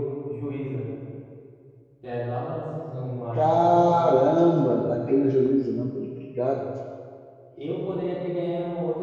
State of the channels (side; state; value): both; identical; correlation 1.00